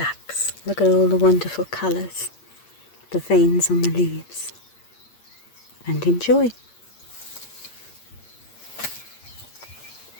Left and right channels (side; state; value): right; late; 8.6 ms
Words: Look at all the wonderful colours, the veins on the leaves, and enjoy.